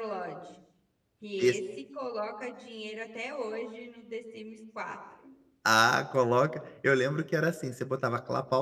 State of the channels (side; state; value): both; identical; correlation 1.00